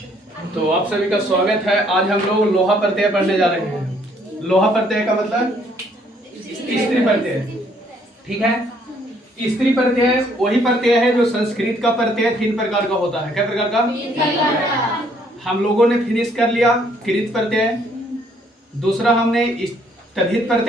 तो आप सभी का स्वागत है। आज हम लोग लोहा प्रत्यय पढ़ने जा रहे हैं। लोहा प्रत्यय का मतलब स्त्री प्रत्यय, ठीक है। स्त्री प्रत्यय वही प्रत्यय है जो संस्कृत का प्रत्यय 3 प्रकार का होता है। क्या प्रकार का? हम लोगों ने फिनिश कर लिया कृत प्रत्यय, दूसरा हमने तद्धित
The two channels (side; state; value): both; normal; correlation 0.65